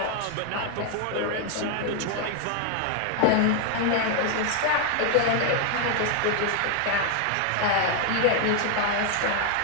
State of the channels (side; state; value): both; different; correlation 0.00